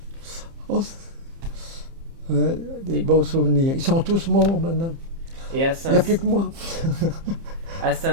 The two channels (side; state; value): left; late; 30 ms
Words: Oh, des beaux souvenirs. Ils sont tous morts maintenant. Et Il n'y a plus que moi. à